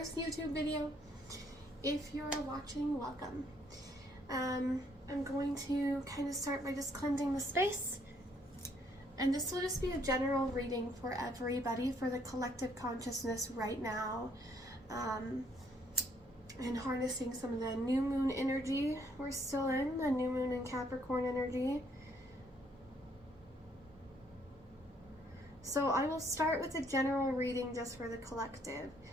YouTube video. If you're watching, welcome. I'm going to kind of start by just cleansing the space. And this will just be a general reading for everybody, for the collective consciousness right now. And harnessing some of the new moon energy we're still in, the new moon and Capricorn energy. So I will start with a general reading just for the collective.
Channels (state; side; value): normal; both; correlation 0.67